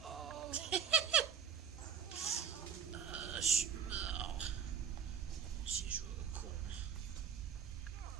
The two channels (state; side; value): quieter; left; 7.8 dB